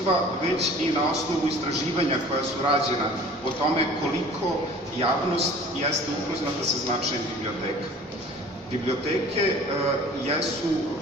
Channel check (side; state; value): both; normal; correlation 0.46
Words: već i na osnovu istraživanja koja su rađena o tome koliko javnost jeste upoznata sa značajem biblioteka. Biblioteke jesu